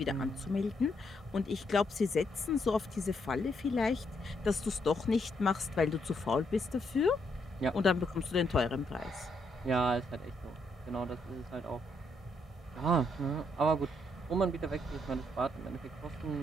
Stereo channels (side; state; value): both; normal; correlation 0.75